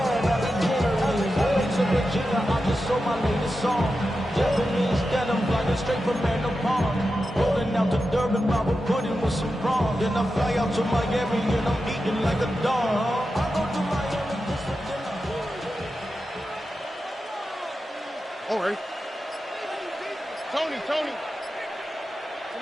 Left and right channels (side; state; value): both; normal; correlation 0.91